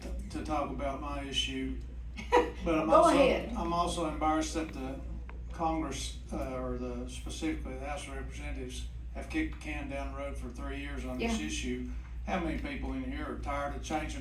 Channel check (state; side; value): identical; both; correlation 1.00